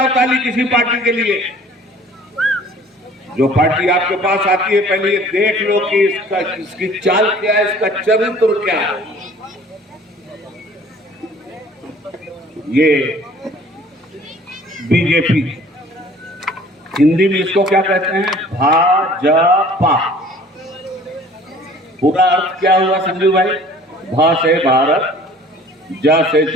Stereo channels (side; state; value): both; normal; correlation 0.51